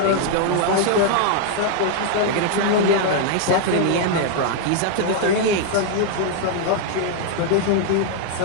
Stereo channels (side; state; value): both; different; correlation 0.00